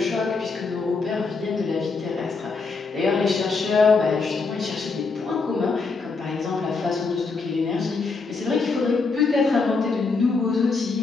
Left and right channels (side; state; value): right; quieter; 4.3 dB